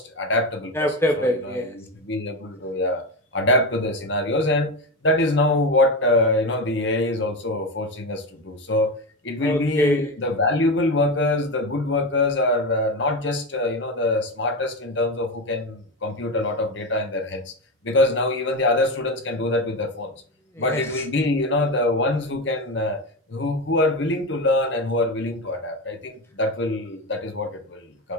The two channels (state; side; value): normal; both; correlation 0.18